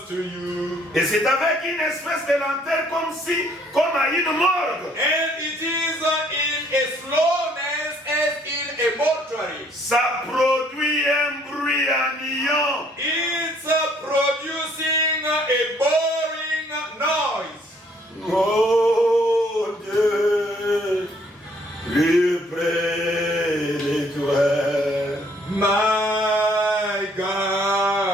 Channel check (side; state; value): both; normal; correlation 0.63